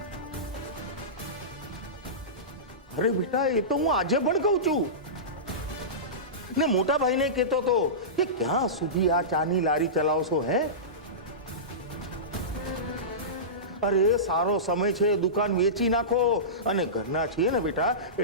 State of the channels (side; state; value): both; normal; correlation -0.20